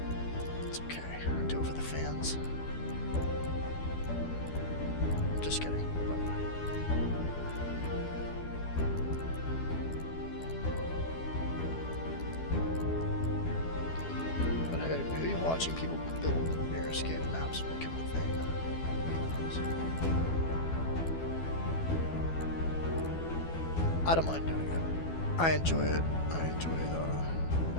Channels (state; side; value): late; right; 12 ms